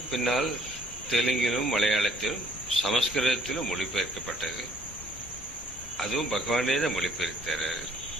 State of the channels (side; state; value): both; normal; correlation 0.61